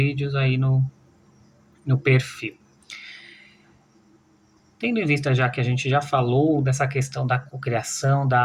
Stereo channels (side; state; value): both; identical; correlation 1.00